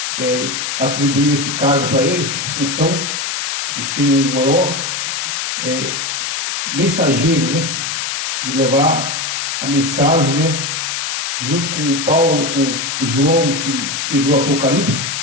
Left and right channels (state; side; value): noise; left; hiss, 2 dB below the sound